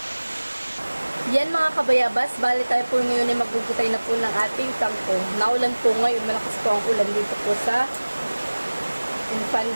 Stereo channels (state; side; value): inverted; both; correlation -1.00